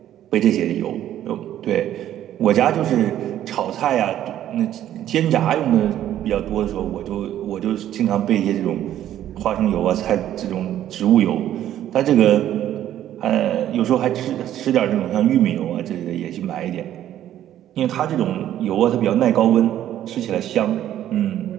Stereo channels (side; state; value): left; quieter; 11.8 dB